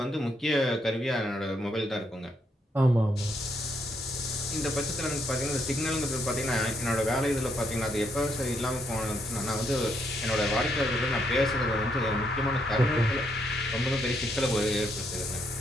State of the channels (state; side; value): normal; both; correlation 0.75